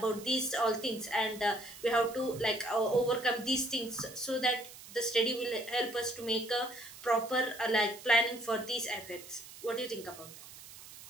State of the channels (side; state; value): right; noise; hiss, 16 dB below the sound